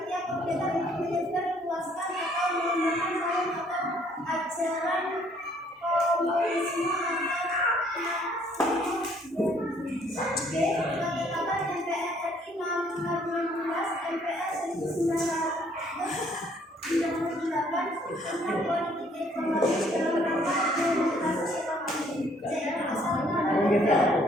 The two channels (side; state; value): both; normal; correlation 0.63